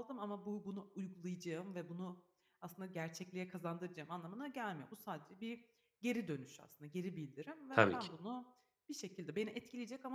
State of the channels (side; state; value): both; identical; correlation 1.00